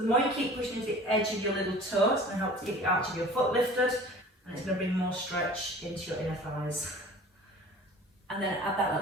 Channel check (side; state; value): both; normal; correlation 0.44